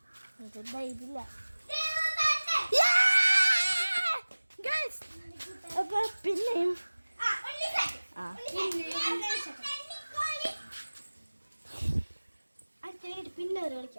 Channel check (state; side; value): inverted; both; correlation -1.00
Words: ഇതില്ല. അപ്പൊ പിന്നെയും പിന്നെ